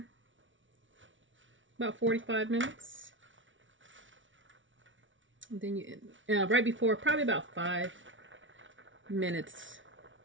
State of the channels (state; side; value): late; left; 0.56 ms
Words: about 45 minutes. And then you, right before, probably about 5 minutes,